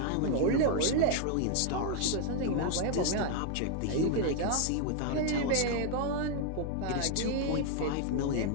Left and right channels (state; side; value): different; both; correlation 0.00